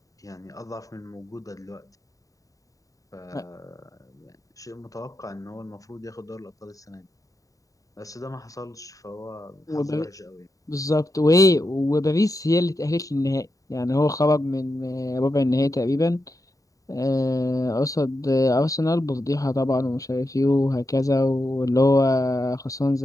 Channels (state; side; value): late; right; 0.16 ms